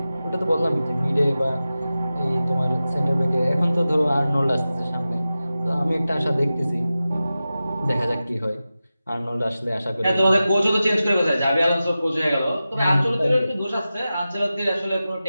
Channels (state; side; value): inverted; both; correlation -0.94